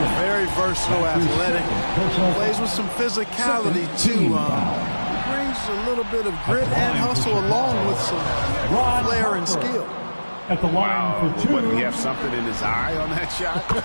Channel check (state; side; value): inverted; both; correlation -1.00